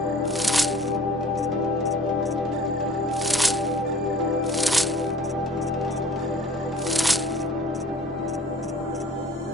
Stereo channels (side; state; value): both; normal; correlation 0.48